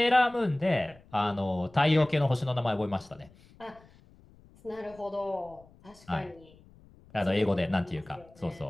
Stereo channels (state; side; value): noise; left; rumble, 26 dB below the sound